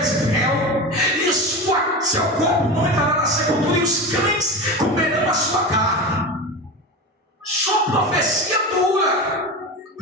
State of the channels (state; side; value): normal; both; correlation 0.24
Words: e seu corpo não entrará na sepultura, e os cães comerão a sua carne. Só profecia dura,